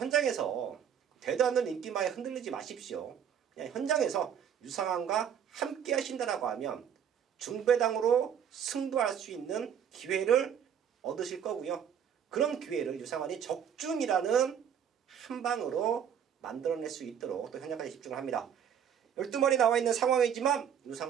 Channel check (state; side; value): quieter; left; 8.5 dB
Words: 되도 않는 인기마에 흔들리지 마십시오. 그냥 현장에서 유상한과 함께 하신다라고 하면 중배당으로 승부할 수 있는 기회를 얻으실 거고요. 그런 기회를 유상한이 적중이라는 한 방으로 만들어낼 수 있도록 또 현장까지 집중을 합니다. 12마리 나와 있는 상황이지만